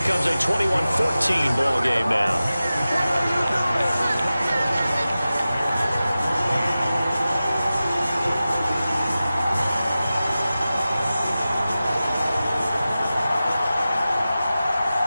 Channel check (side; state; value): both; inverted; correlation -0.95